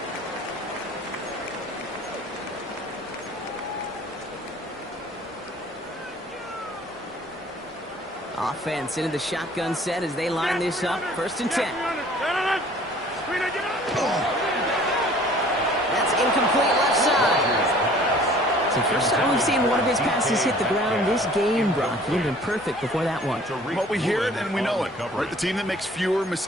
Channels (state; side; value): normal; both; correlation 0.52